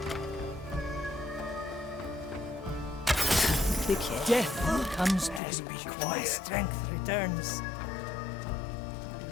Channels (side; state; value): right; drops out; at 5.4 s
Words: Death comes to me when my strength returns.